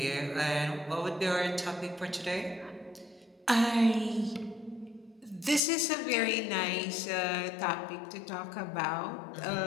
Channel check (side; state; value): right; drops out; at 5.6 s